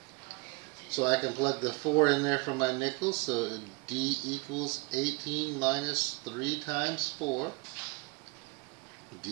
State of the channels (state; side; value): quieter; left; 27.3 dB